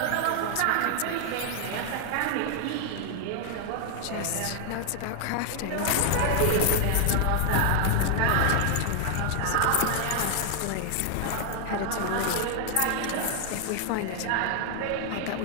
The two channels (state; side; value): different; both; correlation 0.00